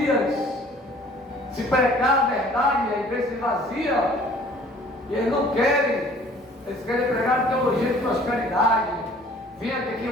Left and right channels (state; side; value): normal; both; correlation 0.52